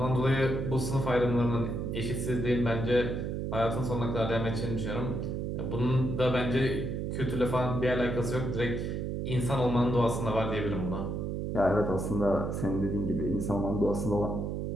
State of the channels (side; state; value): right; noise; hum, 2 dB below the sound